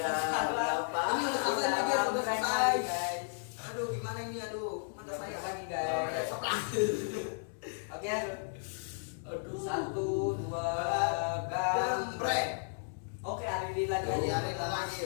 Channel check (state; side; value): silent; right; digital silence